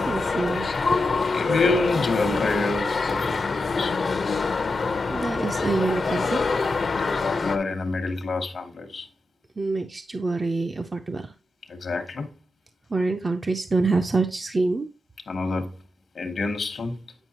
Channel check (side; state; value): both; normal; correlation 0.88